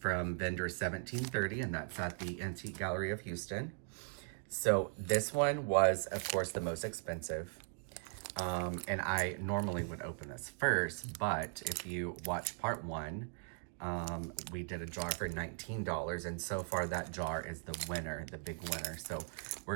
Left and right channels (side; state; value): left; silent; 52 dB below the other